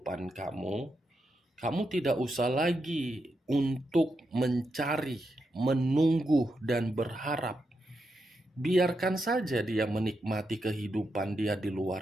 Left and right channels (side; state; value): both; normal; correlation 0.85